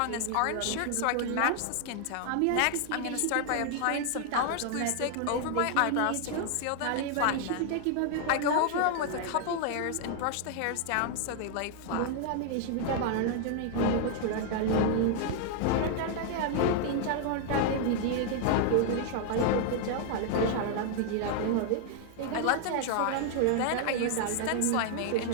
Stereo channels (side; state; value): both; different; correlation 0.00